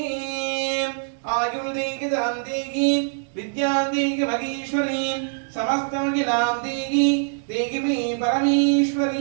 ஆயுள் தேகி தாம் தேகி வித்யாம் தேகி மகேஸ்வரி சமஸ்தமகிலாம் தேகி தேகி மே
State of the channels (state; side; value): silent; left; 63 dB below the other